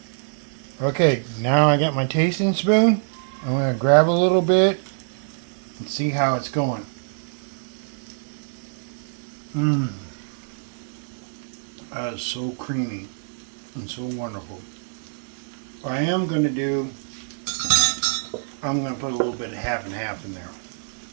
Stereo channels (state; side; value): silent; left; digital silence